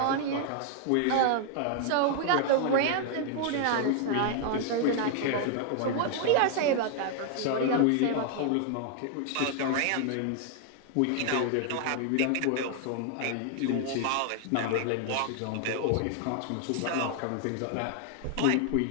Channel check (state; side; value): different; both; correlation 0.00